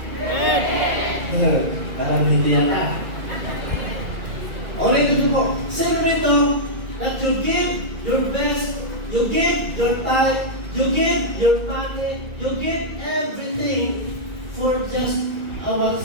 Parang hindi yata. Ulit ito po. Sino dito that you give your best, you give your time You give your money, you give everything for just our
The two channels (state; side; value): late; left; 2.2 ms